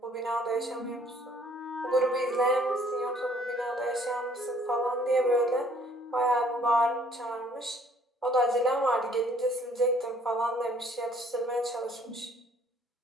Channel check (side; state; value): both; normal; correlation 0.60